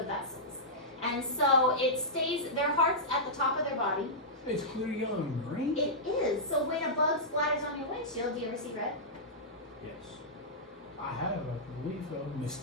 vessels. And so it stays, their heart's at the top of their body. It's clear yellow and green? It is. So when a bug splatters on your windshield, do you ever see red? Yes. I have, I believe so.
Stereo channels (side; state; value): both; normal; correlation -0.13